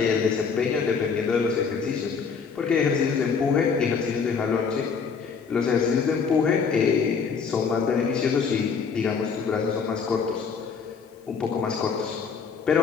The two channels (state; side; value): quieter; right; 5.8 dB